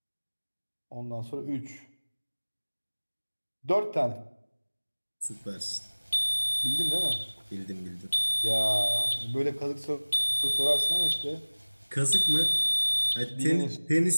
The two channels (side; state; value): both; inverted; correlation -1.00